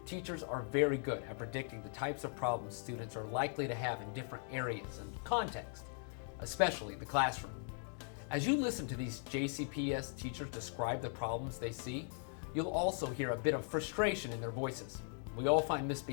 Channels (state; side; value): silent; right; 51 dB below the other